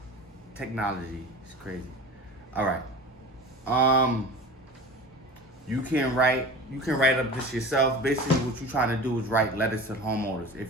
Technology is crazy. All right. You can write up this yourself. Basically, what you're trying to do is write letters to homeowners.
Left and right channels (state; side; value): normal; both; correlation 0.35